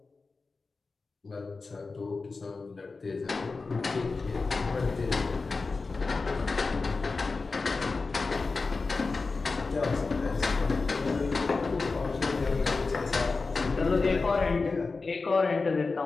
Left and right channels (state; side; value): quieter; right; 4.0 dB